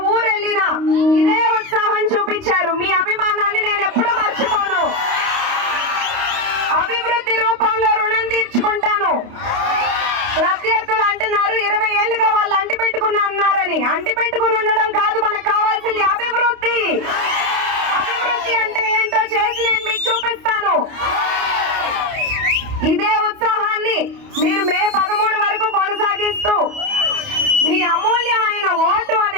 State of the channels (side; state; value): left; late; 29 ms